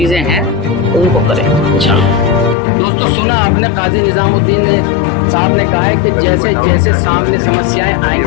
हैं उनको करेंगे इंशाल्लाह। दोस्तों, सुना आपने, काजी निजामुद्दीन साहब ने कहा है कि जैसे जैसे सामने समस्याएं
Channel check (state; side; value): drops out; right; at 2.6 s